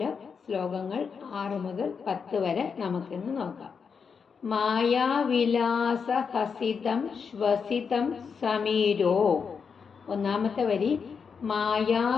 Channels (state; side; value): quieter; right; 6.0 dB